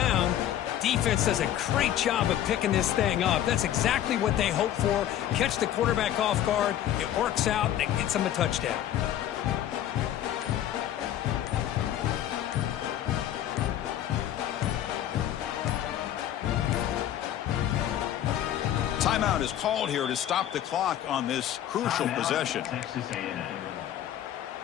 Defense does a great job of picking this thing up. That's exactly what they hope for. Catch the quarterback off guard. It works out, and it gets them a touchdown. Timeout is called here to stop the clock on this crucial possession.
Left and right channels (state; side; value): quieter; right; 11.5 dB